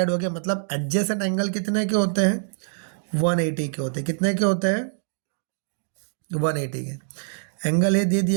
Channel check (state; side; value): silent; left; digital silence